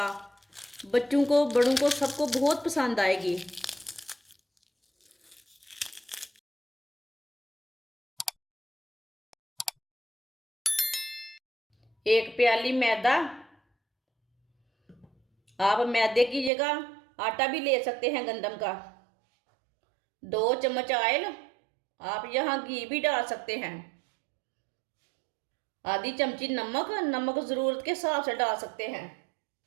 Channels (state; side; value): drops out; left; at 16.5 s